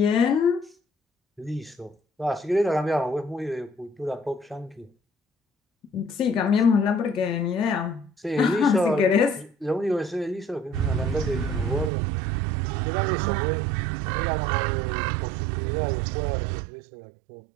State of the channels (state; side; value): drops out; left; at 11.9 s